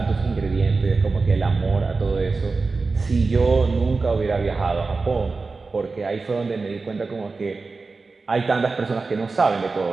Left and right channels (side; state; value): left; quieter; 4.0 dB